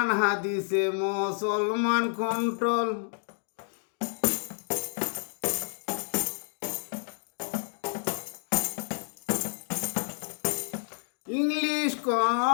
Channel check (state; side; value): silent; right; digital silence